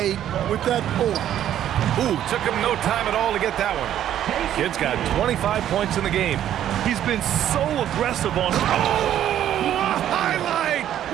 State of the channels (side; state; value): left; quieter; 11.1 dB